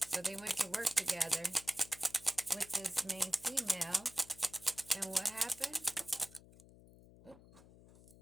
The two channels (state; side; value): noise; left; hum, 21 dB below the sound